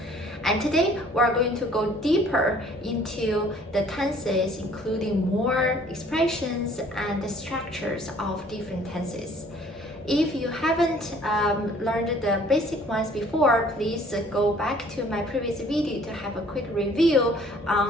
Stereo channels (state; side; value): normal; both; correlation 0.56